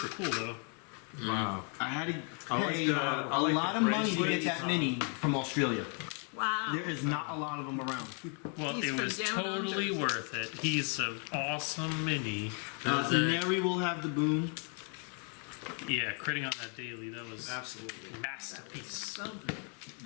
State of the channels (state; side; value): quieter; right; 39.8 dB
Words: cool, though. Wow. I had to I like pay the- a I like lot the of money to get bracelets. that mini from Australia. Wow. There is not a lot of them around. Well, He's it from was down totally under. worth it. He's an awesome mini. Neri will have the boom. Yeah, critting on that daily, that was Absolutely. masterpiece.